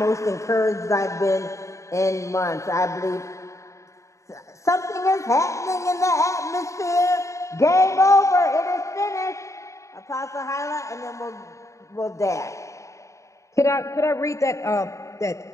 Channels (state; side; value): late; right; 0.15 ms